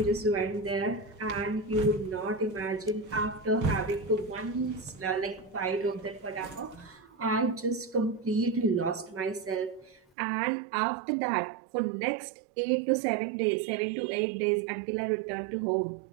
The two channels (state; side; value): drops out; left; at 10.0 s